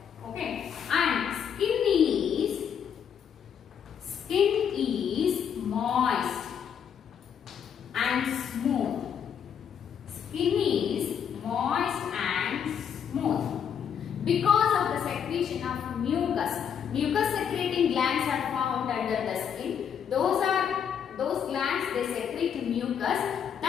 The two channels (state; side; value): quieter; right; 8.0 dB